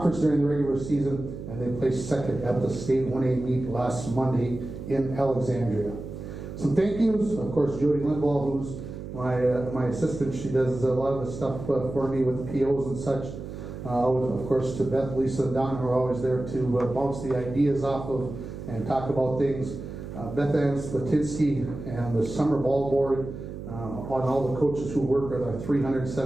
during the regular season, and they placed 2nd at the state 1A meet last Monday in Alexandria. Some thank yous, of course, Jody Lindwall, who's my assistant. She does a lot of the stuff for me with the POs and such. Of course, to Beth, Lisa, and Don, who are always there to bounce the ideas off of and talk about things. Beth Ann Slatinsky and the summer ball board, on all the coaches who work with our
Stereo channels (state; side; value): noise; right; hum, 9 dB below the sound